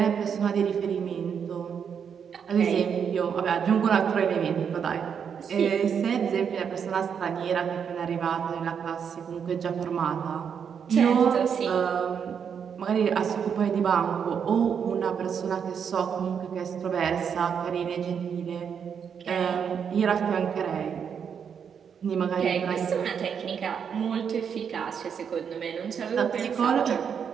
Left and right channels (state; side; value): quieter; left; 7.3 dB